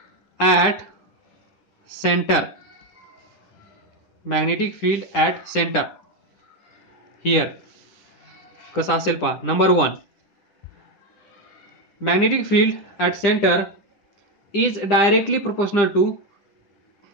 at center, magnetic field at center here कसं असेल पहा. Number 1, magnetic field at centre is directly proportional to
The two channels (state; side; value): late; right; 10 ms